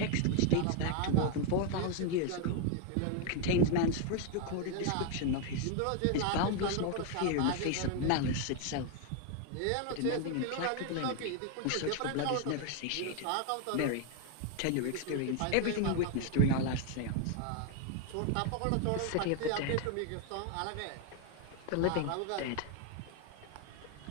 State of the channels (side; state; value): both; different; correlation 0.01